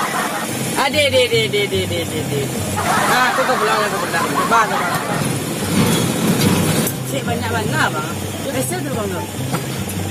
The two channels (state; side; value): identical; both; correlation 1.00